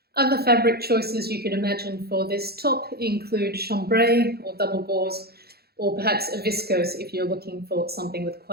Other fabric choices you could imagine for this top include chambray or double gauze, or perhaps a viscose if you're looking for something with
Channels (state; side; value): late; left; 0.46 ms